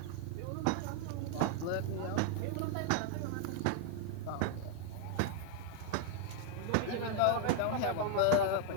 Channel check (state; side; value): different; both; correlation 0.00